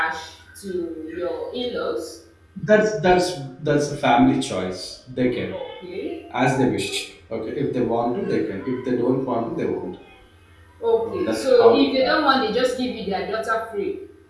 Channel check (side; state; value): both; identical; correlation 1.00